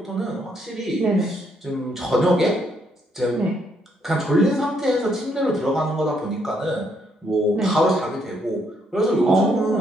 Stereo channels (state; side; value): normal; both; correlation 0.72